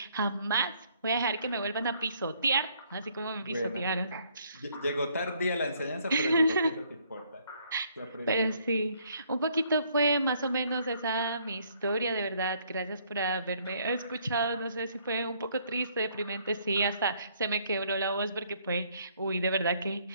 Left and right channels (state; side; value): inverted; both; correlation -0.66